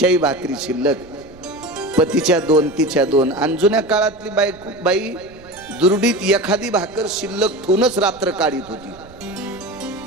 भाकरी शिल्लक पतीच्या 2 तिच्या 2 आणि जुन्या काळातली बाई दुरडीत एखादी भाकर शिल्लक ठेवूनच रात्र काढीत होती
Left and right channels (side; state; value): right; noise; rumble, 23 dB below the sound